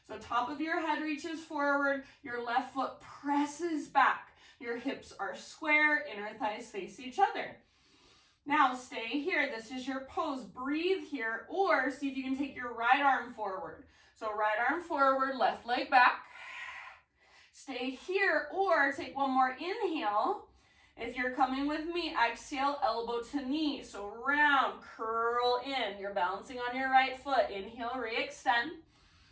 So top of your head reaches forward, your left foot presses back. Your hips are square, inner thighs face each other. Now stay here, this is your pose. Breathe here, or see if you can take your right arm forward. So right arm forward, left leg back. Stay here, or take one more inhale. If you're coming with me, exhale, elbow to knee. So round, curl in. You're balancing on your right foot. Inhale, re-extend.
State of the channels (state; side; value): identical; both; correlation 1.00